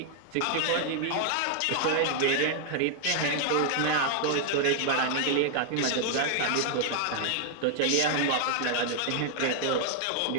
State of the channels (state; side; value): different; both; correlation 0.00